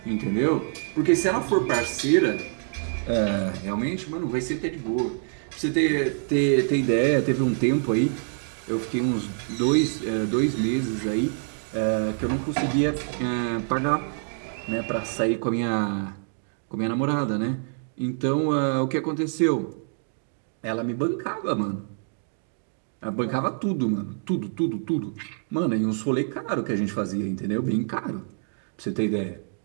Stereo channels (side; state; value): left; silent; digital silence